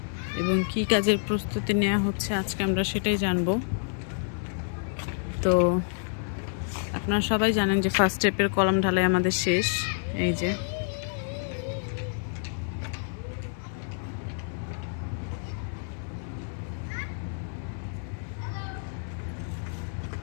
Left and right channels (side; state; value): right; silent; digital silence